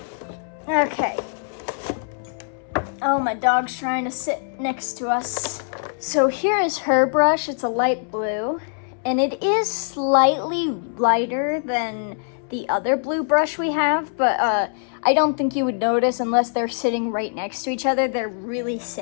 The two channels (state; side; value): silent; right; 62 dB below the other